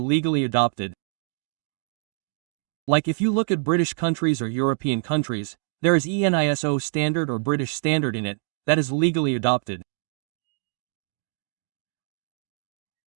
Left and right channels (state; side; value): silent; left; 61 dB below the other